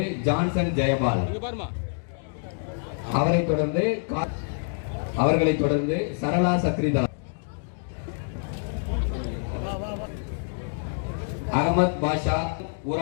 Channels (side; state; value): right; silent; digital silence